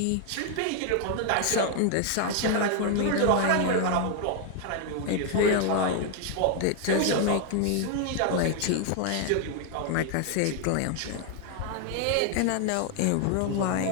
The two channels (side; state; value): both; different; correlation 0.00